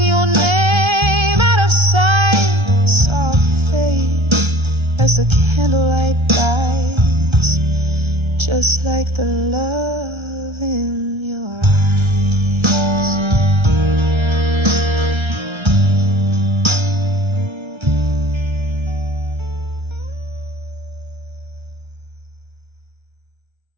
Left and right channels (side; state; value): left; late; 1.3 ms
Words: your name out of sight. Soft fade as the candlelight dies, just like the love in your eyes.